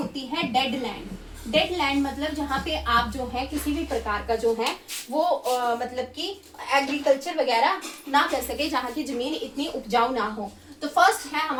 है, डेड लैंड। डेड लैंड मतलब जहाँ पे आप जो है किसी भी प्रकार का जो है वो मतलब कि एग्रीकल्चर वगैरह ना कर सके, जहाँ की जमीन इतनी उपजाऊ ना हो। तो फर्स्ट है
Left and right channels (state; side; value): identical; both; correlation 1.00